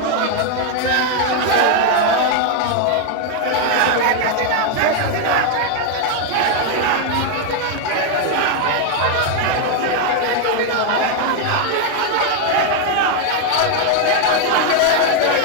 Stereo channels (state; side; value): different; both; correlation 0.01